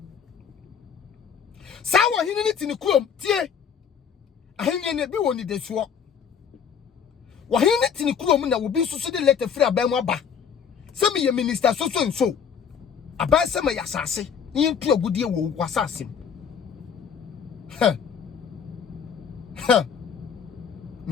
sa wo hene ni ti ni krom tie ahene ne bi woni de so wo hene ni ti ni krom na wo bi soso de letter free aban mu aba se me ye minister so aban se me yasase ni ntu agudie wo wasase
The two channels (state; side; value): quieter; right; 7.4 dB